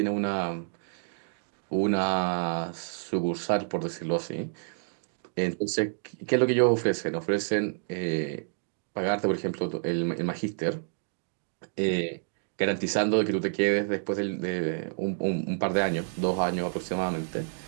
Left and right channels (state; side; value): silent; left; digital silence